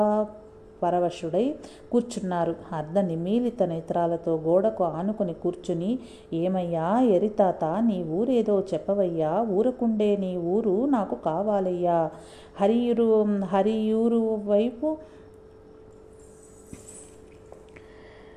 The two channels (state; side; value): identical; both; correlation 1.00